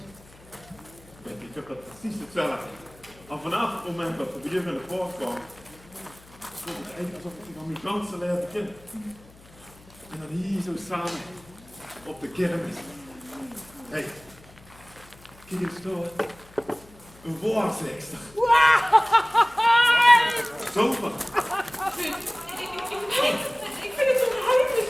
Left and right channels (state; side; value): noise; left; hum, 24 dB below the sound